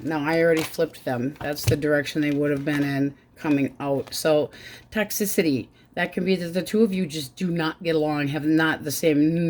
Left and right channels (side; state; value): both; identical; correlation 1.00